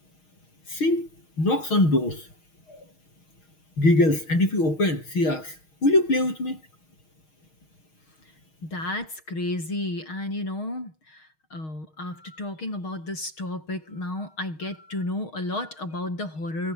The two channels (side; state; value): right; late; 6.4 ms